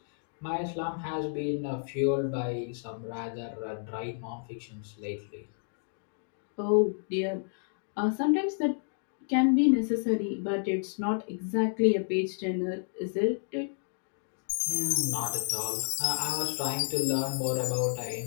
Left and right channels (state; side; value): silent; right; digital silence